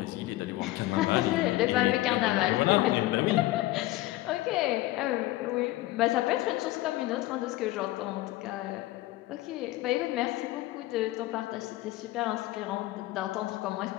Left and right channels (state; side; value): quieter; right; 17.5 dB